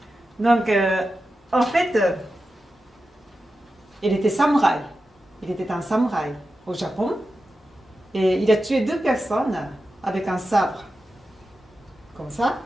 Donc, en fait, il était samouraï. Il était un samouraï au Japon. Et il a tué 2 personnes avec un sabre. Comme ça.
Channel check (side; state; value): both; normal; correlation 0.91